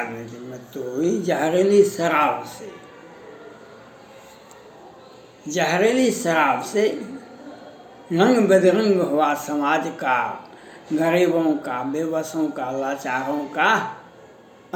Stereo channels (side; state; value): both; identical; correlation 1.00